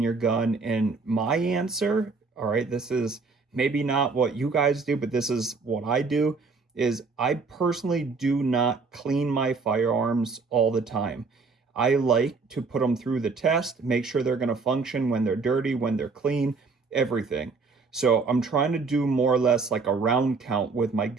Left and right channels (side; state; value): left; quieter; 4.4 dB